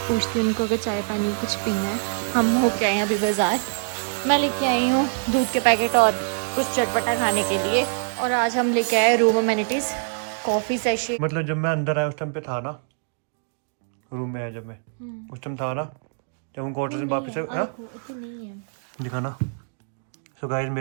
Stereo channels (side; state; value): left; silent; digital silence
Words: पूछती हूँ उनको कि चाय पानी कुछ पीना है। हम होके आए हैं अभी बाजार, मैं लेके आई हूँ दूध के पैकेट और कुछ चटपटा खाने के लिए। और आज हम लेके आए रूम अमेनिटीज, कॉफी सेशे। मतलब जब मैं अंदर आया उस टाइम पे था ना, रूम में आया जब मैं उस टाइम था ना, जब हम क्वार्टर से वापस दिखा ना। सो गाइस